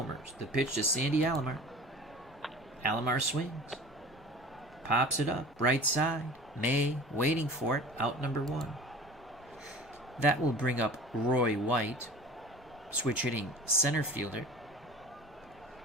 The pitch to Sandy Alomar. Alomar swings. Pops it up, right side. May waiting for it, out number 1. That will bring up Roy White, switch hitting center fielder,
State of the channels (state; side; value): normal; both; correlation 0.40